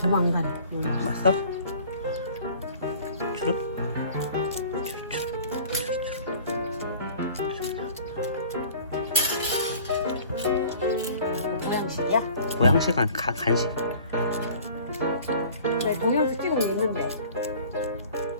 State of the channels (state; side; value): inverted; both; correlation -0.48